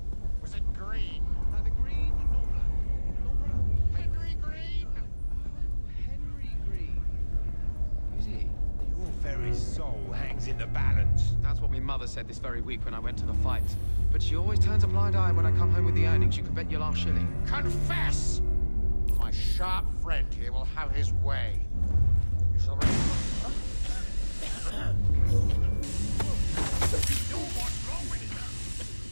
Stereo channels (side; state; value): both; inverted; correlation -1.00